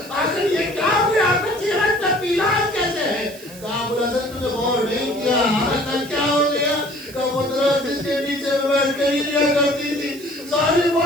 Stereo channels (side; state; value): right; noise; hiss, 19 dB below the sound